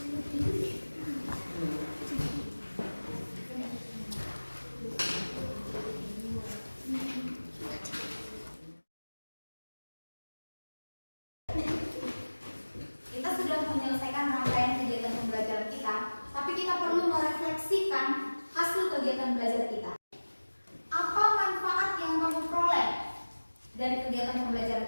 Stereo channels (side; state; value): both; inverted; correlation -1.00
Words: Kita sudah menyelesaikan rangkaian kegiatan pembelajaran kita, tapi kita perlu merefleksikan hasil kegiatan belajar kita. Apa manfaat yang kamu peroleh dari kegiatan